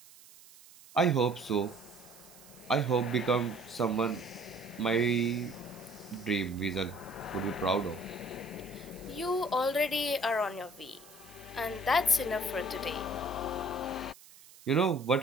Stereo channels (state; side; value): noise; right; hiss, 22 dB below the sound